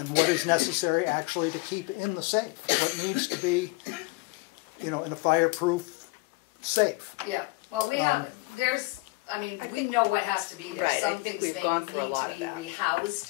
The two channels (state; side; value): quieter; right; 23.8 dB